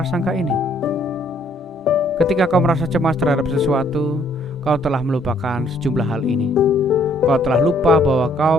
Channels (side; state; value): both; normal; correlation 0.65